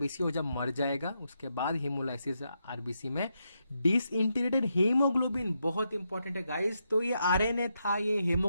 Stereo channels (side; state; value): both; inverted; correlation -0.82